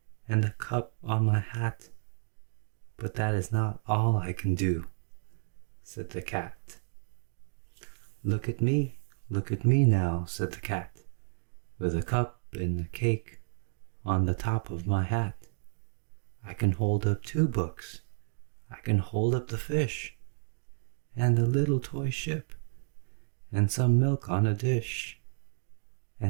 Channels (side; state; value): left; silent; digital silence